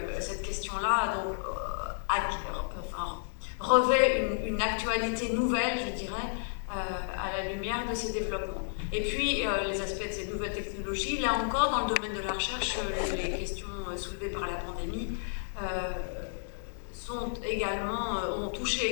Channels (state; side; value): silent; right; digital silence